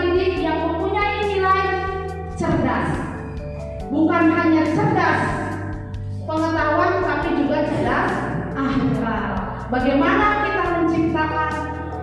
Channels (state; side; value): identical; both; correlation 1.00